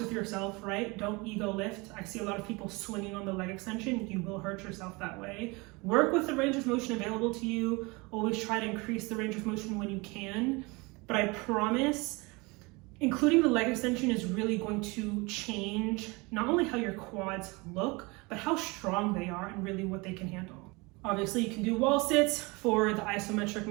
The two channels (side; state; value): left; quieter; 26.1 dB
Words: yourself, right? Don't ego lift. I see a lot of people swinging on the leg extension. You will hurt yourself that way. Work with the range of motion available to you. Always try to increase the range of motion when you can. But I promise, including the leg extension is really going to change not only how your quads look, but how strong they are and really what they can handle. Obviously, you can do wall sits for the isometric